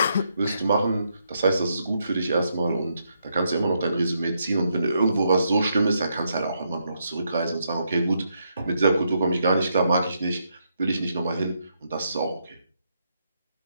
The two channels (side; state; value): both; inverted; correlation -0.79